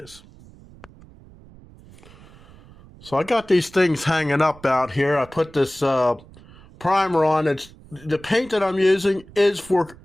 So I got these things hanging up out here. I put this primer on. The paint that I'm using is for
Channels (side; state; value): right; noise; rumble, 23 dB below the sound